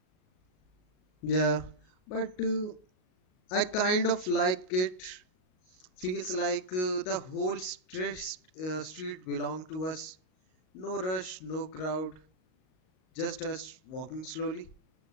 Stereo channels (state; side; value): late; right; 38 ms